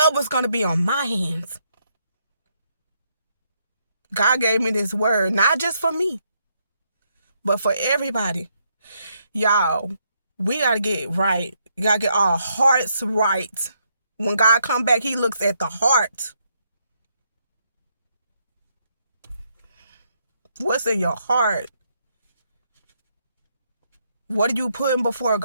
was going to be on my hands. God gave me this word, not just for me, but for everybody. Y'all, we got to get right. We got to get our hearts right. When God come back, he looks at the heart. What's in your heart? What are you putting before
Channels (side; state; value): both; inverted; correlation -0.75